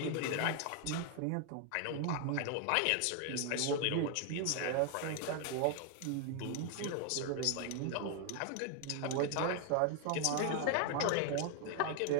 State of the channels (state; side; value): different; both; correlation 0.00